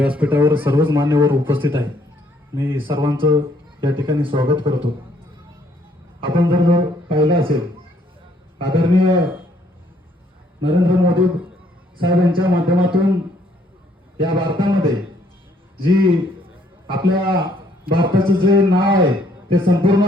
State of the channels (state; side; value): normal; both; correlation 0.66